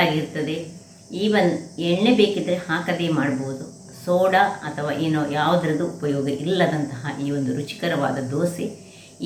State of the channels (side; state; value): both; identical; correlation 1.00